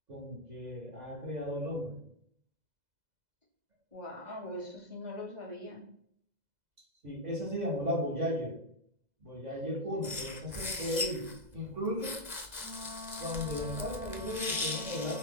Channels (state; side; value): late; left; 2.0 ms